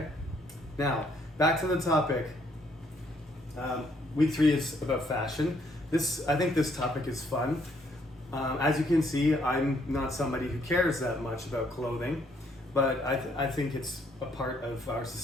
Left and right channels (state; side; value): normal; both; correlation 0.68